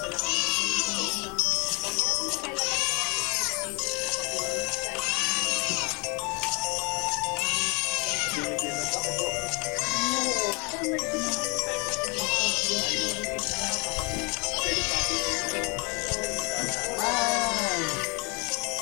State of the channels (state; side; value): quieter; right; 31.3 dB